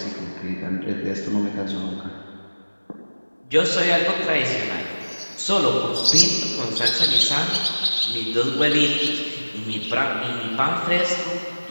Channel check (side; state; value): both; inverted; correlation -1.00